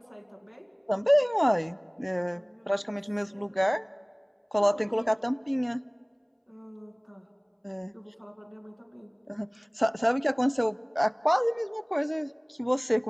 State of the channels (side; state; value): both; identical; correlation 1.00